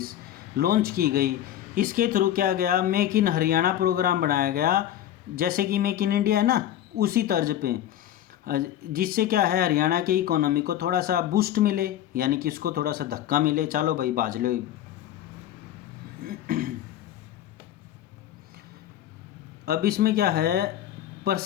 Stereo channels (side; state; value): right; quieter; 11.8 dB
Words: launch की गई। इसके थ्रू क्या गया, मेक इन हरियाणा प्रोग्राम बनाया गया, जैसे कि मेक इन इंडिया है ना उसी तर्ज पे, जिससे क्या है हरियाणा के इकोनॉमी को थोड़ा सा बूस्ट मिले, यानी कि उसको थोड़ा सा धक्का मिले, चलो भाई बाज लो। अब इसमें क्या है